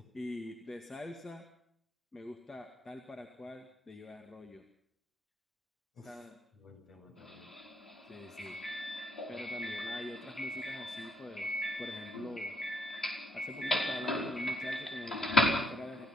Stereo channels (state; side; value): normal; both; correlation 0.72